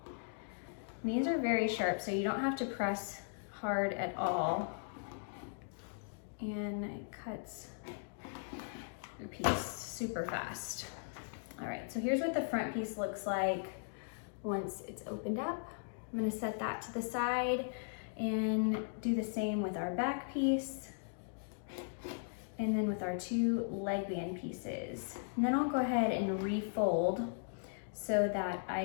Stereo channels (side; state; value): right; silent; digital silence